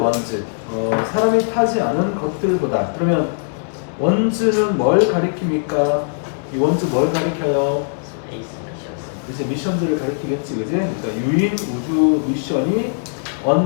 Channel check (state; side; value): silent; right; digital silence